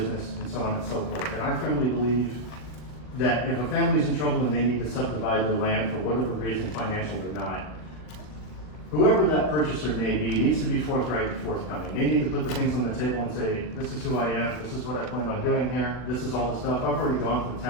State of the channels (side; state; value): right; late; 40 ms